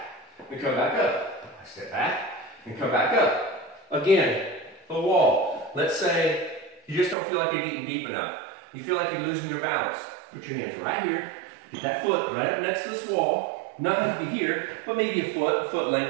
and come back up. I step back and come back up. Again, the wall. Let's say you just don't feel like you're getting deep enough. You feel like you're losing your balance. Put your hands right here. Get that foot right up next to this wall. Not like here, but maybe a foot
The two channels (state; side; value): drops out; left; at 7.2 s